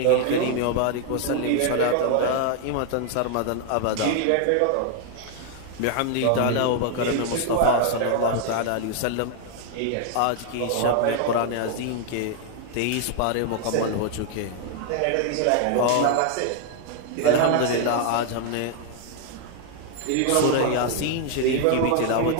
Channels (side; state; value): both; different; correlation 0.00